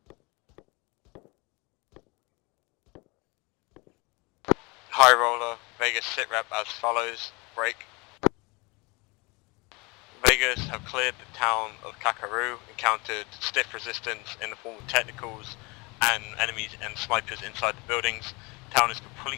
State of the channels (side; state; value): right; quieter; 27.3 dB